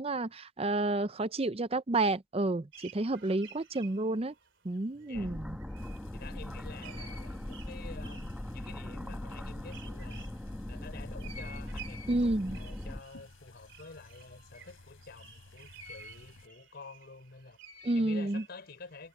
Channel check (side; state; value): both; normal; correlation 0.57